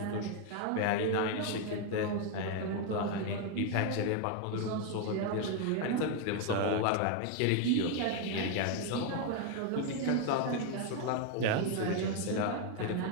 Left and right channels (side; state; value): both; different; correlation 0.01